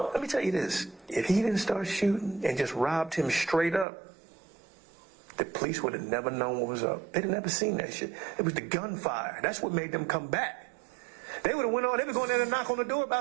Let me tell you this. If he didn't start shooting and just robbed him straight up, the police would have never known what was up. They'd have never seen that shit. It was the gunfire. That's what made them come back. They would have went on, they were going there to knock on the door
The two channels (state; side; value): drops out; left; at 3.9 s